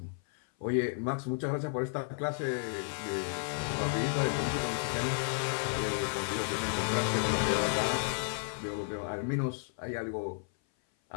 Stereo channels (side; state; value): right; silent; 56 dB below the other